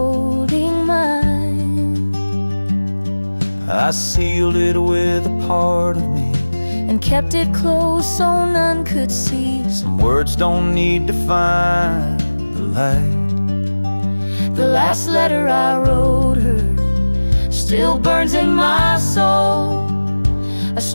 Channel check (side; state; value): both; inverted; correlation -1.00